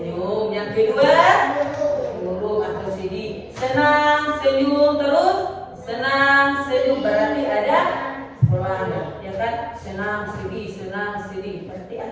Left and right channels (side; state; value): both; identical; correlation 1.00